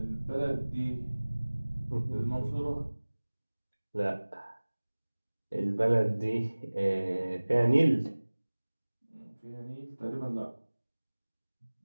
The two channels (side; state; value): both; inverted; correlation -1.00